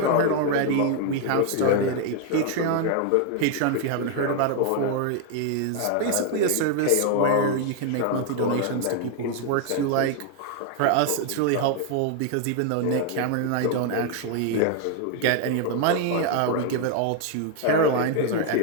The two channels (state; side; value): different; both; correlation 0.00